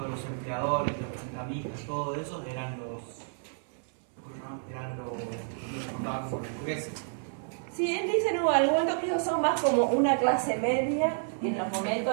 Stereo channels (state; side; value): silent; left; 58 dB below the other